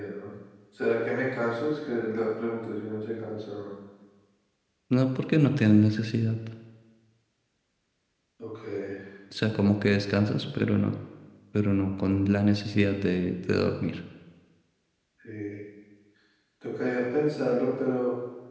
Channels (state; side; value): identical; both; correlation 1.00